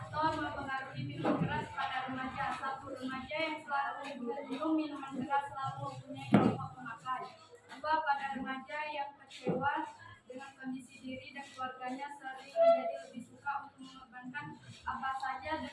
mempengaruhi minuman keras pada remaja. 1. Remaja yang selalu minum minuman keras selalu mempunyai kelompok pemakai. 2. Pada remaja yang kecewa dengan kondisi diri dan keluarganya sering menjadi lebih suka untuk mengorbankan apa saja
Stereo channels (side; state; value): both; identical; correlation 1.00